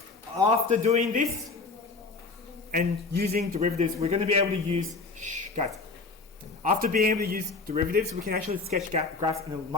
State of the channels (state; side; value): quieter; right; 4.0 dB